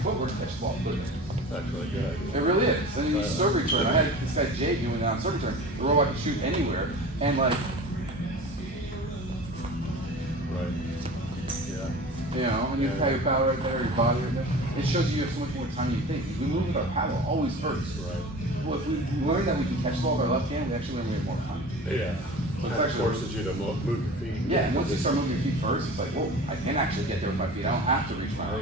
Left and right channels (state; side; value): normal; both; correlation 0.36